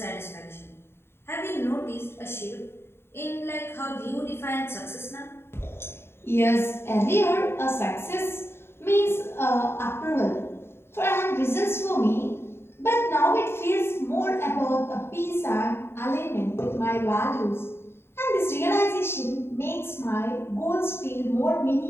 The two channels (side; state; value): right; late; 0.12 ms